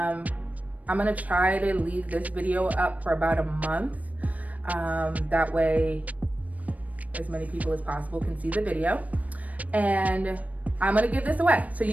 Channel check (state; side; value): late; left; 0.071 ms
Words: gonna try to leave this video up for about a month. That way as many people as possible can see the video. And I'm gonna give this away. So